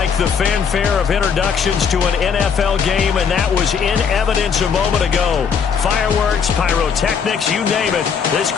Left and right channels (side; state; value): right; quieter; 6.6 dB